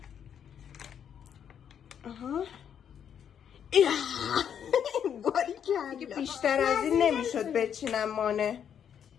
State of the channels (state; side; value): quieter; right; 8.5 dB